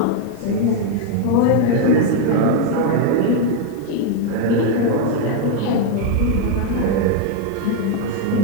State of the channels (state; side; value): different; both; correlation 0.01